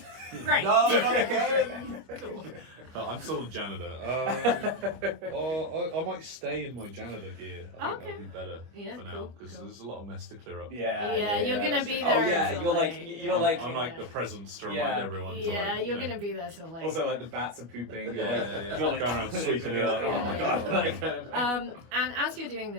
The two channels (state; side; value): late; left; 25 ms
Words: Great. No, not again! Cool. But I'm still a janitor. I might stay in my janitor gear. I think that'd be better Yeah, for now cool, because cool. there's a lot of mess to clear up. Yeah, you're gonna that's be true. there Oh yeah, until you're late. I'm like the presence to remind Yeah. everyone. to, Yeah, like, you're you know, gonna be there till late. Also, like the bats are pooping. Yeah, You're like, yeah. You're like Going around sweeping it up. Oh my Yeah, god! yeah. Like, And as you're doing